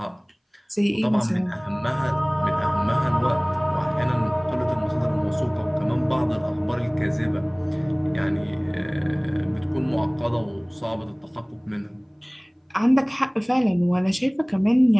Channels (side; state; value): both; identical; correlation 1.00